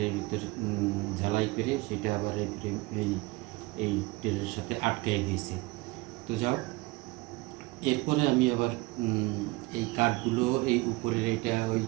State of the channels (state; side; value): quieter; left; 23.3 dB